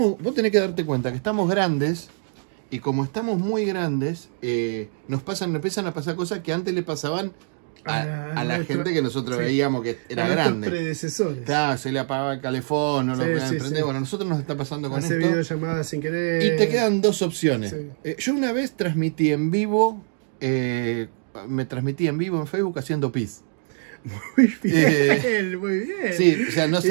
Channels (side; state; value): left; silent; digital silence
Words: Vos tenés que darte cuenta que estamos grandes y como estamos muy grandes, nos empiezan a pasar cosas que antes le pasaban a la gente que nosotros veíamos que era grande. Predecesores. Claro, se le apagaba el calefón, no lo podían prender. Sí. Bueno, a nosotros nos está pasando con Hace esto. videollamadas sin querer. Y te quedan dos opciones. Sí. Yo una vez transmití en vivo, me transmití en vivo en Facebook haciendo pis. Muy bien, muy bien. Sí, o sea, no